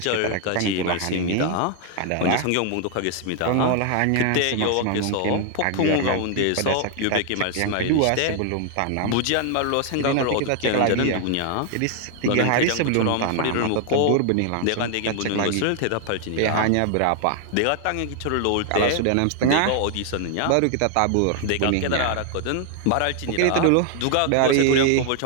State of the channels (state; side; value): different; both; correlation 0.00